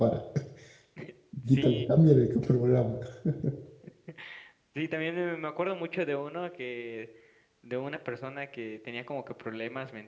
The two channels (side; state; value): both; identical; correlation 1.00